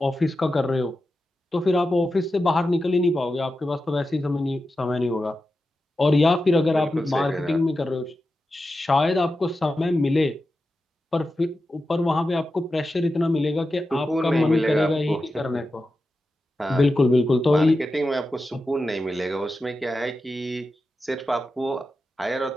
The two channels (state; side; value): normal; both; correlation 0.91